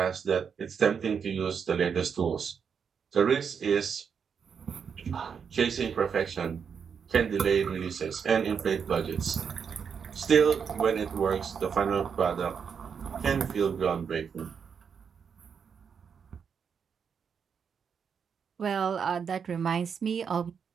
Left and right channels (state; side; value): quieter; left; 6.7 dB